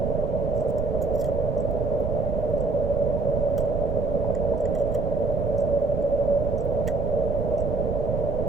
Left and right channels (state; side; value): noise; right; rumble, 1 dB below the sound